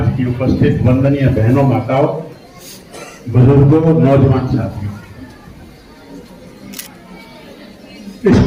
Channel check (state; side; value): identical; both; correlation 1.00